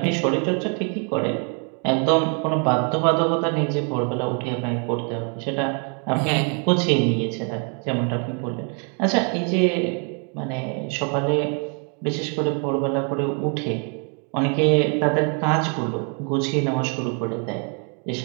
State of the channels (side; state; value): left; quieter; 39.6 dB